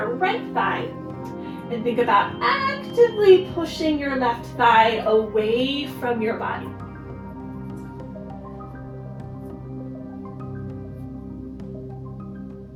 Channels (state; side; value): identical; both; correlation 1.00